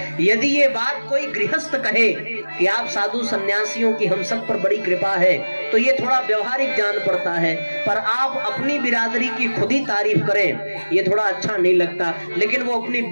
यदि ये बात कोई गृहस्थ कहे कि आप साधु सन्यासियों की हम सब पर बड़ी कृपा है, तो ये थोड़ा व्यवहारिक जान पड़ता है। पर आप अपनी बिरादरी की खुद ही तारीफ करें, ये थोड़ा अच्छा नहीं लगता। लेकिन वो अपनी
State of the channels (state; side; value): inverted; both; correlation -1.00